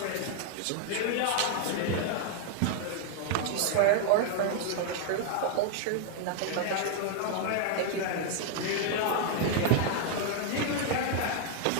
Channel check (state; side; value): different; both; correlation 0.00